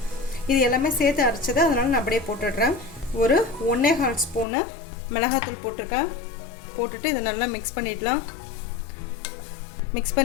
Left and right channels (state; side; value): drops out; right; at 4.5 s